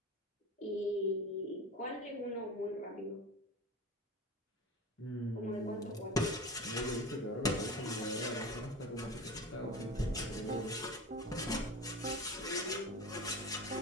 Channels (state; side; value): normal; both; correlation 0.32